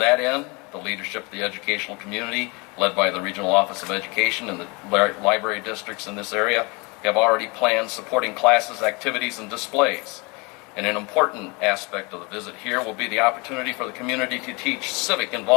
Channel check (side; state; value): right; quieter; 28.7 dB